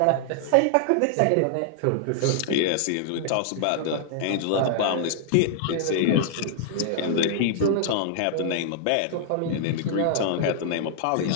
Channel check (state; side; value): different; both; correlation -0.01